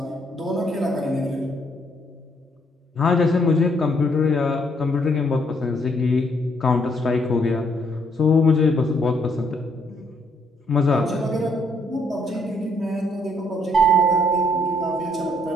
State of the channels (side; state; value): both; normal; correlation 0.70